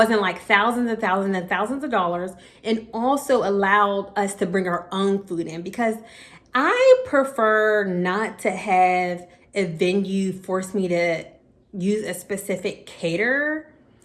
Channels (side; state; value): both; identical; correlation 1.00